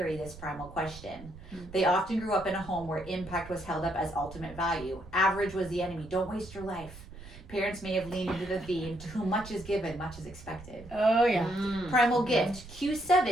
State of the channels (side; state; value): right; noise; rumble, 17 dB below the sound